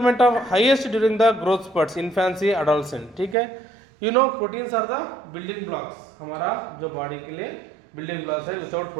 of highest during the growth spurts, infancy, adolescent, ठीक है। You know proteins are the building blocks, हमारा जो बॉडी के लिए बिल्डिंग ब्लॉक्स है, विदाउट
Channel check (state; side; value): drops out; left; at 3.4 s